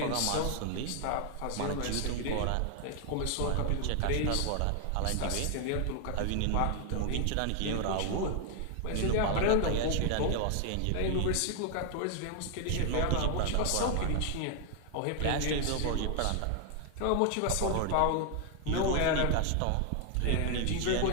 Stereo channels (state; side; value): different; both; correlation 0.00